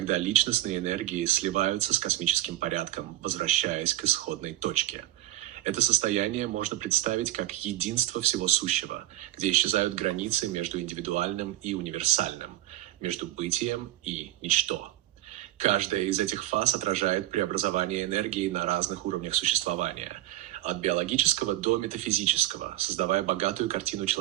личностные энергии сливаются с космическим порядком, возвращаясь к исходной точке. Это состояние можно представить как единство всего сущего, где исчезают границы между индивидуальным и универсальным, между бытием и ничто. Каждая из этих фаз отражает преобразование энергии на разных уровнях существования, от биологического до метафизического, создавая богатую картину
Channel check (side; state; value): left; quieter; 15.3 dB